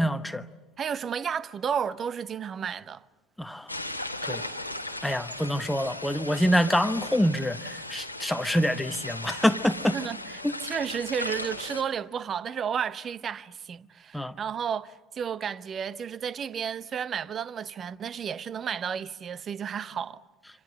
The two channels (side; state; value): both; normal; correlation 0.77